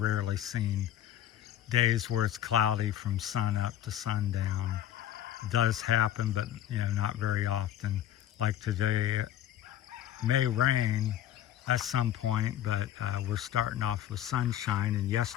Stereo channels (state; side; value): quieter; right; 11.4 dB